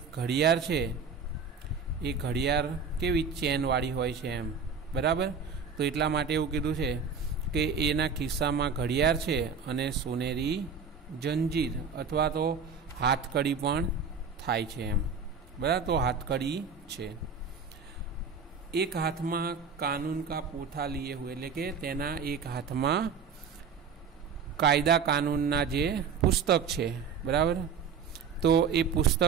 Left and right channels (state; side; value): quieter; left; 5.7 dB